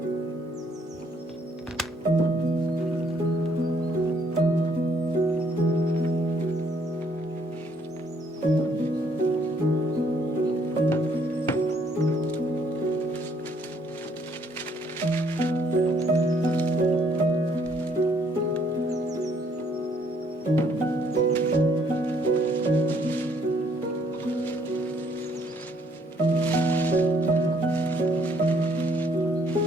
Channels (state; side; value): normal; both; correlation 0.66